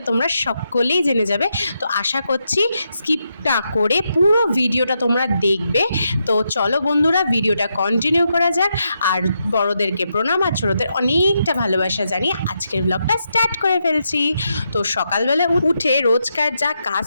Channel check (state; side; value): inverted; both; correlation -0.83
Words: তোমরা সকলেই জেনে যাবে। তো আশা করছি স্কিপ না করে পুরো ভিডিওটা তোমরা দেখবে। তো চলো বন্ধুরা, ভিডিওটা কন্টিনিউ করা যাক। আর বড়োদেরকে প্রণাম আর ছোটোদের অনেকটা ভালোবাসা জানিয়ে আজকের ব্লগটা স্টার্ট করে ফেলছি। তো সকালবেলা উঠে রোজকার যা কাজ